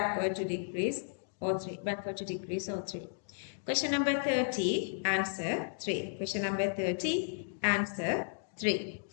to decrease O3, backward to decrease O3. Question number 30, answer 3. Question number 30, answer 3.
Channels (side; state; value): right; silent; digital silence